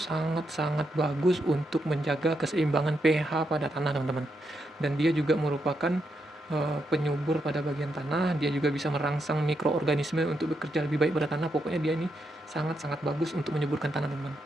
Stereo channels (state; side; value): normal; both; correlation 0.82